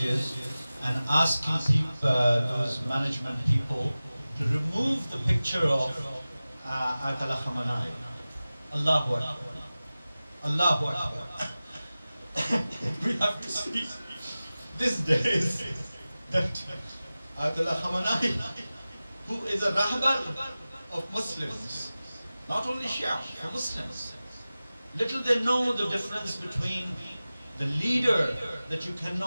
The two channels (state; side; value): inverted; both; correlation -0.97